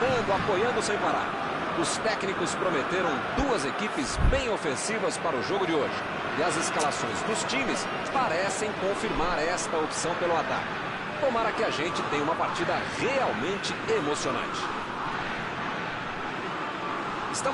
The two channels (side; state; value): both; identical; correlation 1.00